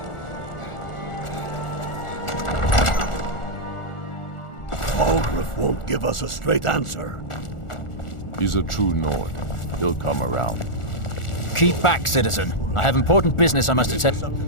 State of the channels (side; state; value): right; late; 1.4 ms